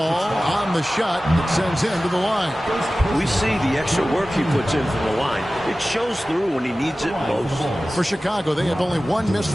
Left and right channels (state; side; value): normal; both; correlation 0.96